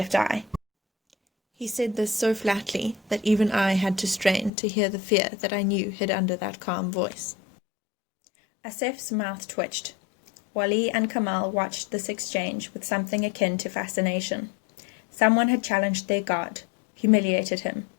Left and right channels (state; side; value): drops out; right; at 4.5 s